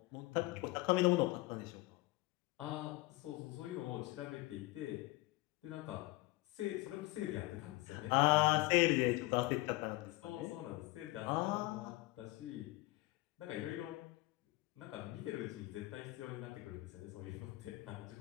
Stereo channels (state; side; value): quieter; right; 20.4 dB